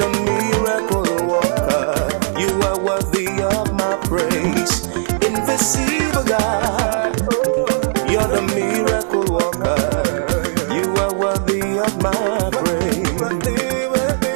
miracle worker. You are worthy of my praise. Invisible God. You're the miracle worker. You are worthy of my praise.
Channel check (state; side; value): silent; left; 63 dB below the other